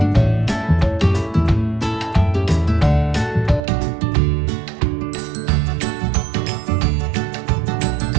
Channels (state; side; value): drops out; left; at 3.6 s